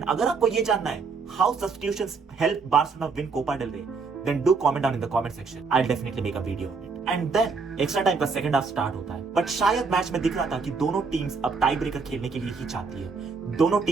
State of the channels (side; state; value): left; quieter; 4.8 dB